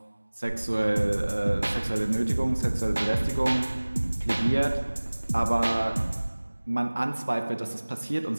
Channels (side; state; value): both; inverted; correlation -1.00